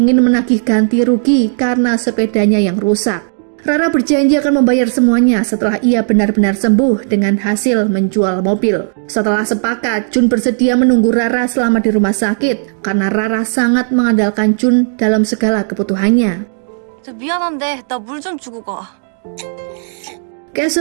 menagih ganti rugi karena sepedanya yang rusak. Rara berjanji akan membayar semuanya setelah ia benar-benar sembuh dengan hasil menjual mobil. Setelah sepakat, Jun bersedia menunggu Rara selama di rumah sakit karena Rara sangat mengandalkan Jun dalam segala kebutuhannya. 미안한데 나 물 좀 주고 가.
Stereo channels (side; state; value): left; silent; digital silence